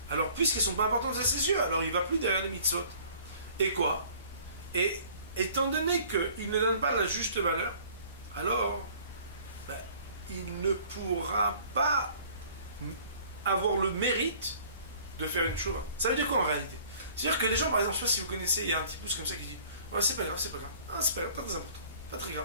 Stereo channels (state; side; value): inverted; both; correlation -0.52